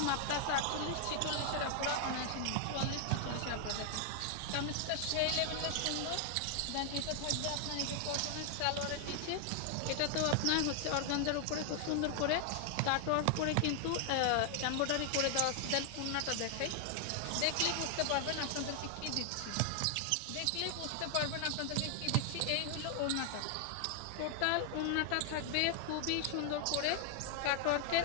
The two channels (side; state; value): both; different; correlation 0.00